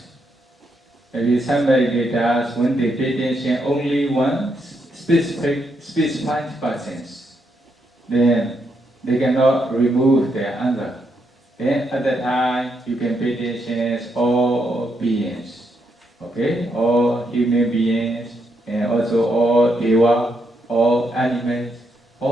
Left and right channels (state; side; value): normal; both; correlation 0.79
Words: maybe some meditators, when they pay attention only one specified person, then they cannot remove their anger. Then at that time, you can pay attention to all beings, okay? All human beings, and also all deva, all animals,